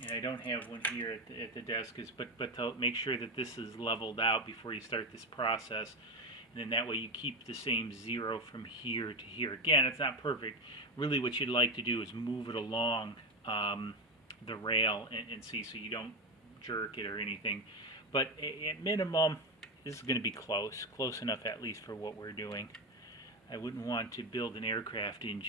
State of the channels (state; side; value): normal; both; correlation 0.15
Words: and I don't have one here at the desk, is but to make sure that this is leveled out before you start this process. And then that way you keep the same 0 from here to here. Again, it's not perfect. Really what you'd like to do is move it along the rail and see, so you don't jerk it or anything. But at minimum, this is going to be close enough at least for what we're doing. I wouldn't want to build an aircraft